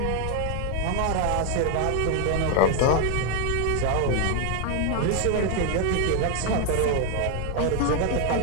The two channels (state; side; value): different; both; correlation 0.00